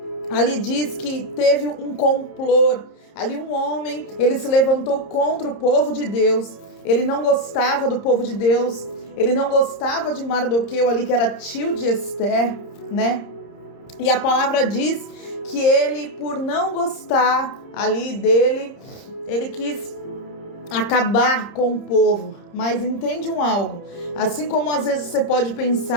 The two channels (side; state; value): right; late; 30 ms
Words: ali diz que teve um complô, ali um homem, ele se levantou contra o povo de Deus, ele não gostava do povo de Deus, ele não gostava de Mardoqueu ali, que era tio de Esther, né? E a palavra diz que ele, por não gostar ali dele, ele quis acabar com o povo. Mas entende algo, assim como às vezes você pode